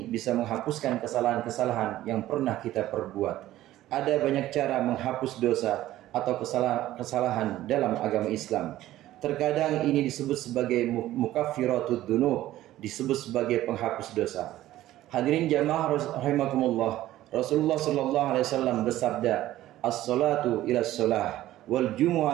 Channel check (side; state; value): left; quieter; 14.6 dB